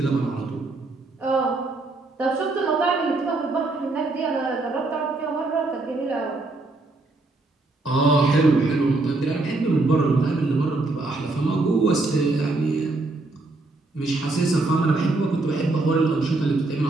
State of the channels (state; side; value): quieter; left; 3.2 dB